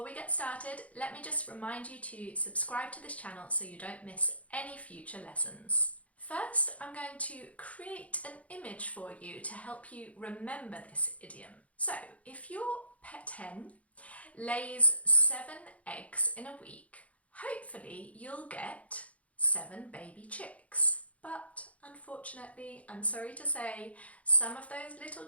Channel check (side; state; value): right; late; 0.066 ms